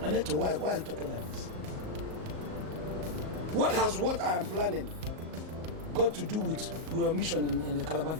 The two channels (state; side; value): late; left; 38 ms